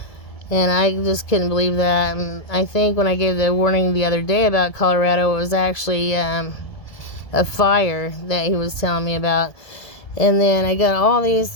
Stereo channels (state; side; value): late; right; 1.7 ms